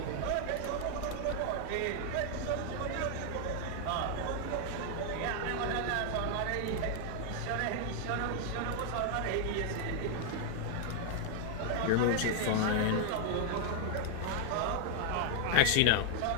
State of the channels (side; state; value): both; different; correlation 0.00